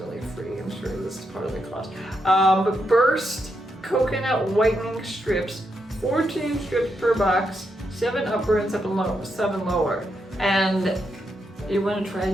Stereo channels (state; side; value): normal; both; correlation 0.82